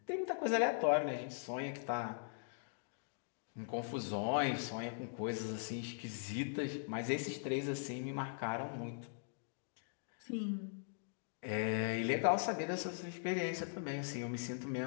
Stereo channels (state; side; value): silent; right; digital silence